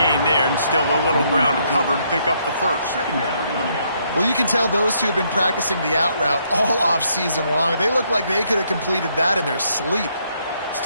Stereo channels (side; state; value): both; inverted; correlation -0.72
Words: there, and still a little ground to cover to pick up the first. Well, you can tell those two have been practicing the out route all off season long. They look like they could have completed that in their sleep.